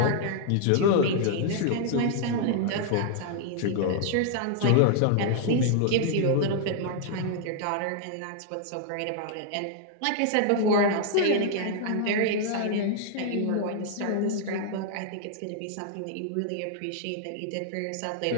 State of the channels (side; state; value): both; different; correlation 0.00